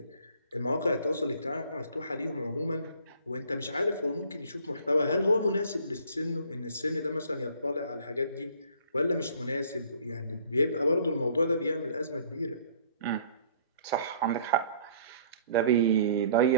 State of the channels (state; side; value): inverted; both; correlation -0.54